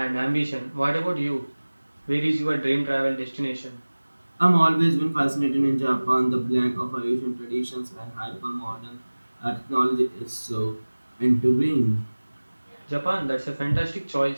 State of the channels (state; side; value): inverted; both; correlation -1.00